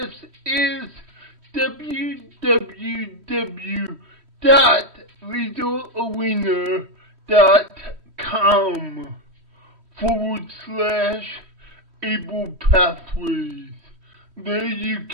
is www.littlearena.com/Able Pathways. There you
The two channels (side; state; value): left; late; 3.1 ms